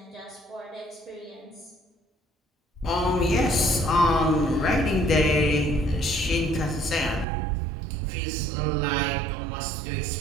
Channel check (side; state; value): left; drops out; at 7.2 s